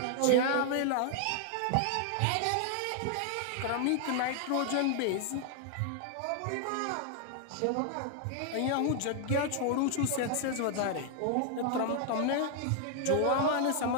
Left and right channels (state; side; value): different; both; correlation 0.00